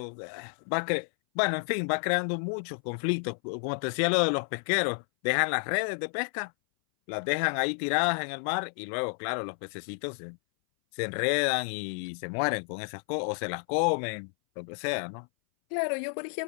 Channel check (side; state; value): right; silent; 58 dB below the other